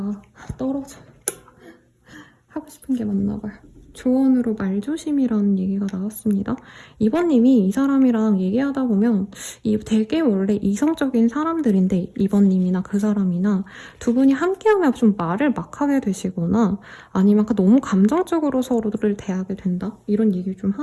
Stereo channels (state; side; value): identical; both; correlation 1.00